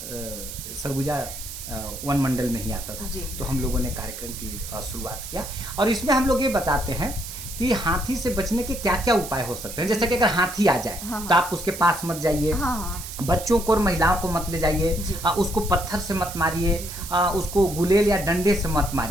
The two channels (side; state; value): right; noise; hiss, 10 dB below the sound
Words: सरगुजा वन मंडल में ही आता था। तो हम लोगों ने कार्यक्रम की शुरुआत किया, और इसमें हम लोग ये बताते हैं कि हाथी से बचने के क्या क्या उपाय हो सकते हैं। जैसे कि अगर हाथी आ जाए तो आप उसके पास मत जाइए, बच्चों को और महिलाओं को मत ले जाइए, उसको पत्थर से मत मारिए, उसको गुलेल या डंडे से मत